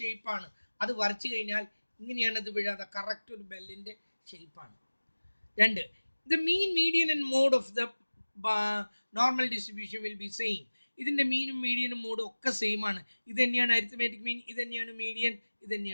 അത് വരച്ചു കഴിഞ്ഞാൽ ഇങ്ങനെയാണ് ഇത് വീഴാതെ, കറക്റ്റ് ഒരു ബെല്ലിൻ്റെ ഷേപ്പാണ്. രണ്ട്, the mean, median and mode of the normal distribution will be same. ഇതിൻ്റെ മീനും മീഡിയനും മോഡും ഒക്കെ സെയിം ആണ്. ഇത് തന്നെയാണ് അരിത്മെറ്റിക് മീൻ, ഇത് തന്നെയാണ് മീഡിയൻ, ഇത്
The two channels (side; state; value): both; inverted; correlation -1.00